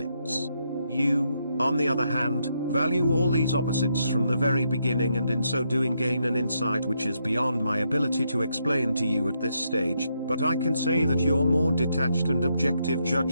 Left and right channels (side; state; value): both; inverted; correlation -0.79